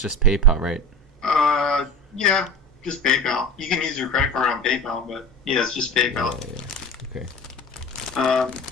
PayPal, right? Yeah, just PayPal. You can use your credit card on PayPal, but yeah, it's just PayPal. Yeah. Okay.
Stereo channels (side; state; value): both; normal; correlation 0.33